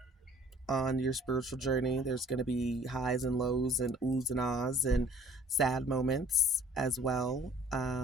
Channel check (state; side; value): normal; both; correlation 0.54